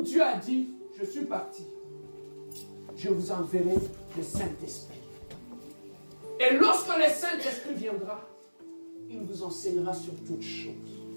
Dieu a dit, je suis parti. Je vous enverrai le Saint-Esprit. Et lorsque le Saint-Esprit viendra, il vous enseignera sur toutes choses.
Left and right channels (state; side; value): inverted; both; correlation -1.00